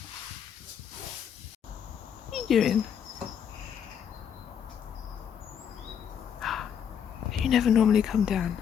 What are you doing? You never normally come down.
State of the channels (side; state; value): right; quieter; 8.2 dB